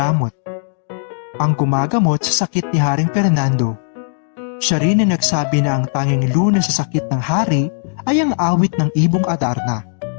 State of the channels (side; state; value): right; silent; digital silence